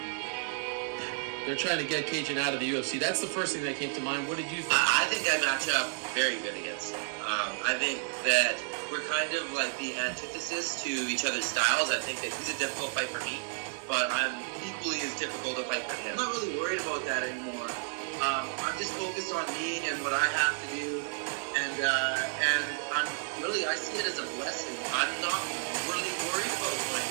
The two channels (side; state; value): left; silent; 57 dB below the other